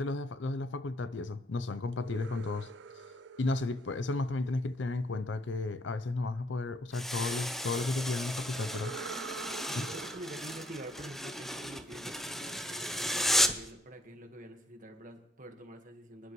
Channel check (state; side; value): normal; both; correlation 0.69